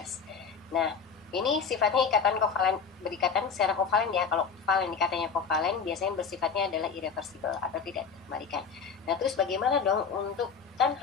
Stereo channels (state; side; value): quieter; right; 5.9 dB